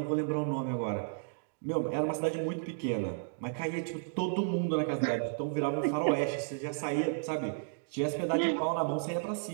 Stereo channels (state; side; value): silent; left; digital silence